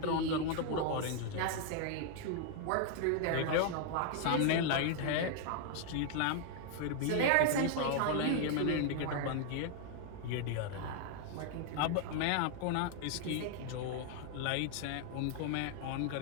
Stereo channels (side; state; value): both; different; correlation 0.00